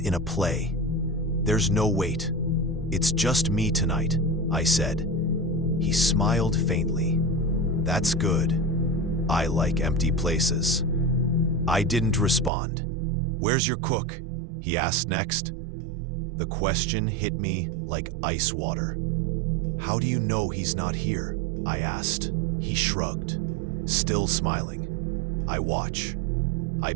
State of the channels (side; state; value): left; drops out; at 12.5 s